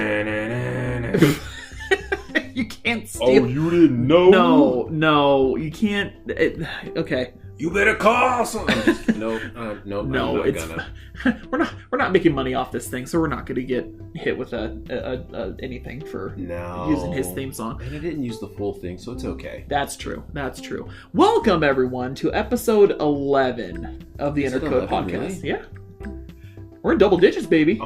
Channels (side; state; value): both; identical; correlation 1.00